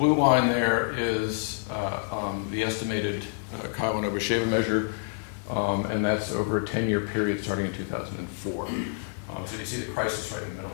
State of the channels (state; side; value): silent; right; digital silence